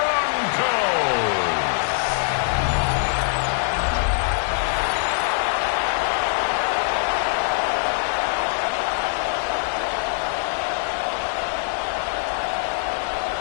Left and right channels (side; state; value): right; silent; 64 dB below the other